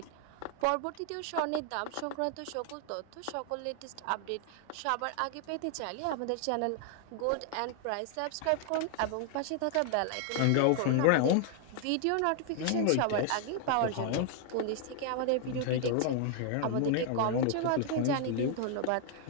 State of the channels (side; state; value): both; different; correlation 0.00